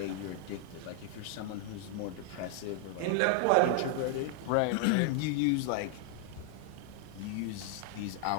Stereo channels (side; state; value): both; different; correlation 0.00